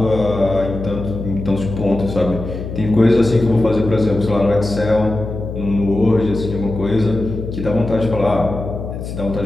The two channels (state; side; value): noise; left; hum, 7 dB below the sound